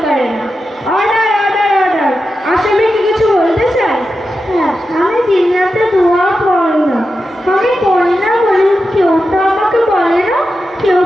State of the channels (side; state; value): both; normal; correlation 0.90